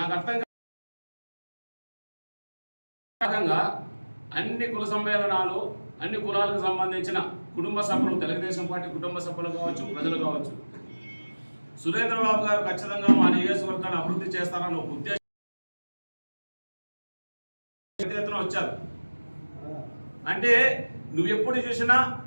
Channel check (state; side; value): inverted; both; correlation -1.00